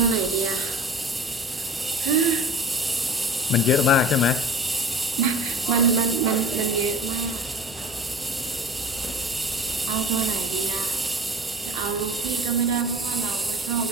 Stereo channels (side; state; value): both; normal; correlation 0.39